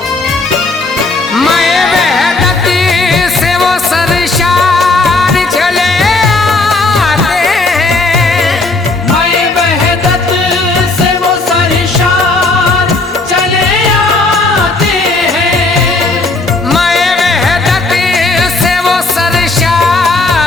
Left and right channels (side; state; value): right; quieter; 3.4 dB